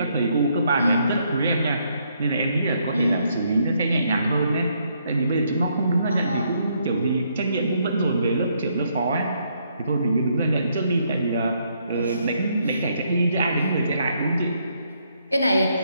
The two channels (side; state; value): both; inverted; correlation -0.73